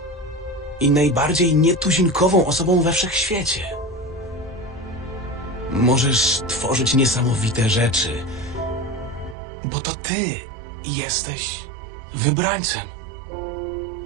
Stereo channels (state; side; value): drops out; left; at 9.3 s